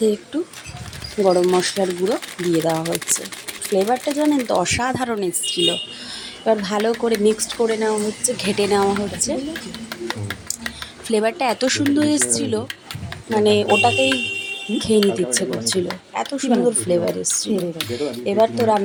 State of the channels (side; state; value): both; identical; correlation 1.00